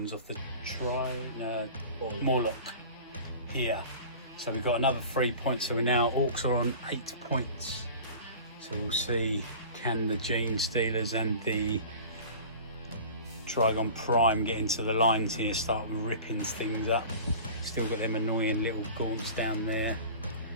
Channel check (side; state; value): both; inverted; correlation -0.40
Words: off the Morlock here. So we've got another 3 points. So we're now, Orks are on 8 points. So we'll see, can the gene stealers and the Trygon Prime get into the lines here, start ripping things up. Still got them annoying little gaunts down there.